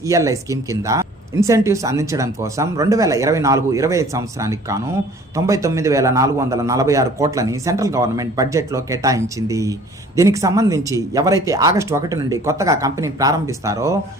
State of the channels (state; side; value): normal; both; correlation 0.51